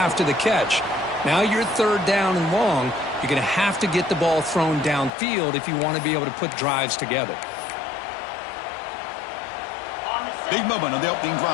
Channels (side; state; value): right; drops out; at 5.1 s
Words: the catch. Now you're third down and long. You're going to have to get the ball thrown downfield if you want to be able to put drives together. Big moment on the opening